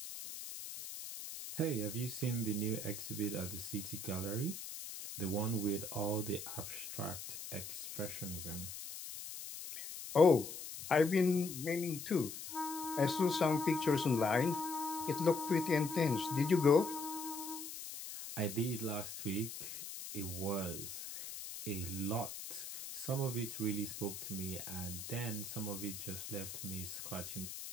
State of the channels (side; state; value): left; noise; hiss, 9 dB below the sound